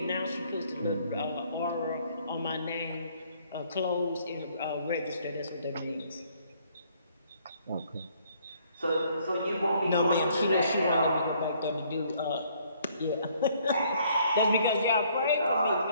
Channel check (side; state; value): both; inverted; correlation -0.64